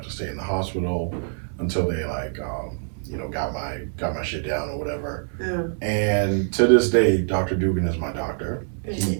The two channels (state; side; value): silent; left; 62 dB below the other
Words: to stay in the hospital until they like, got my shit down or whatever. Yeah. And to this day, Dr. Dugan is my doctor.